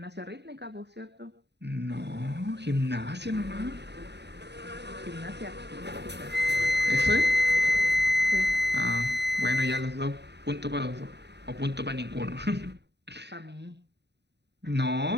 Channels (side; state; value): left; late; 0.50 ms